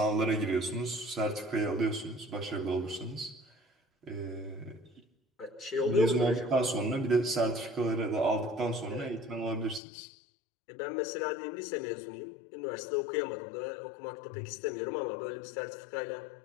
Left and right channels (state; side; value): drops out; right; at 9.8 s